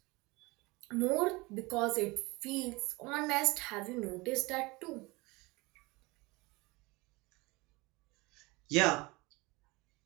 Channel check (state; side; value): quieter; left; 23.9 dB